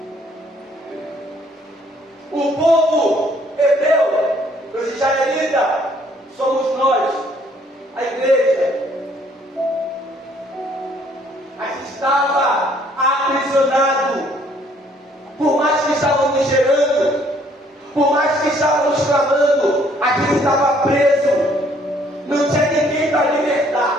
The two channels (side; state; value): both; normal; correlation 0.63